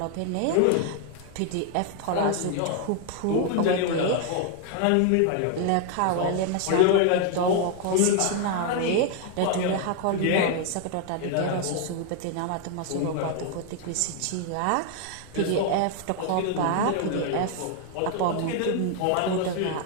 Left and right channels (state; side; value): different; both; correlation 0.00